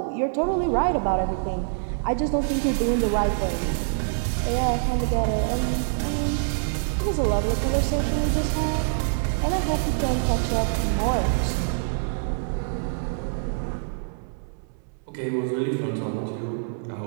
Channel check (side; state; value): left; silent; 62 dB below the other